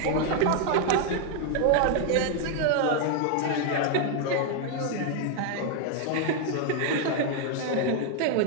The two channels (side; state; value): both; different; correlation 0.00